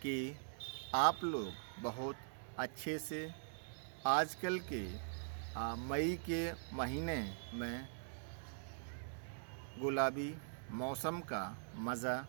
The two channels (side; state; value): left; silent; digital silence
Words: कि आप लोग बहुत अच्छे से आजकल के मई के महीने में गुलाबी मौसम का मज़ा